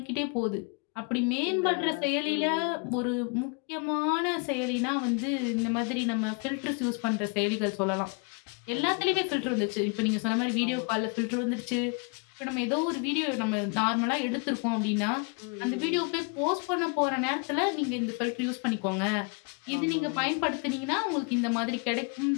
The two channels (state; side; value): quieter; right; 34.8 dB